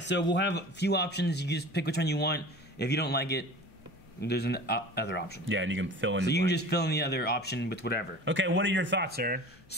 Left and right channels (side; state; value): left; noise; hum, 29 dB below the sound